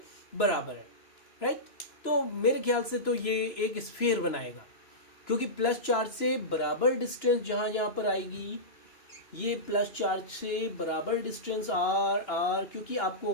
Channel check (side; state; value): right; late; 2.9 ms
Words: बराबर है, राइट। तो मेरे ख्याल से तो ये एक स्फीयर बनाएगा, क्योंकि प्लस चार्ज से बराबर डिस्टेंस जहां जहां पर आएगी, ये प्लस चार्ज से बराबर डिस्टेंस आर आर, क्योंकि